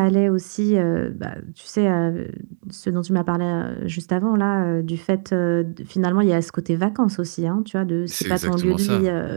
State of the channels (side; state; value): left; silent; digital silence